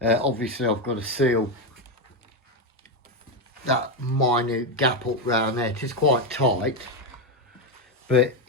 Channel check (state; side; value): normal; both; correlation 0.09